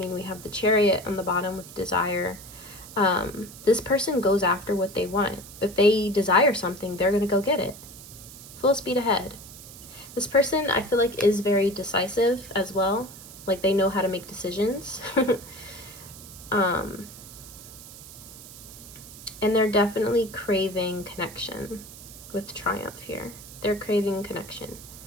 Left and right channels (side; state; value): right; noise; hiss, 16 dB below the sound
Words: we have the Chariot on the bottom with desire. This person goes after what they want. If they desire something, they're going to go get it. Full speed ahead. This person, I feel like, is very decisive as well. Like, they know how to make decisions. And they're definitely craving connection with Triumph here. They're craving connection.